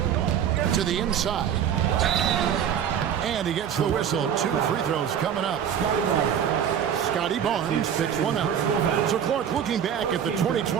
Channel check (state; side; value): quieter; left; 8.8 dB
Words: To the inside. And he gets the whistle. 2 free throws coming up. Scotty Barnes picks one out. So Clark, looking back at the